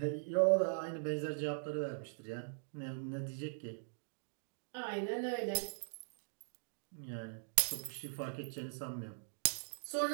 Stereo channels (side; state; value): left; silent; digital silence